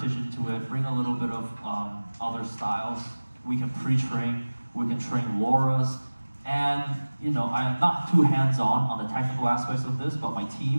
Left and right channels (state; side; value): inverted; both; correlation -1.00